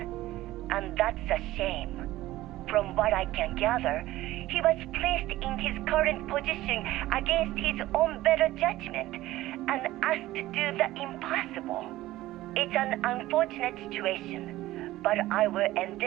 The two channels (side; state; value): left; quieter; 16.3 dB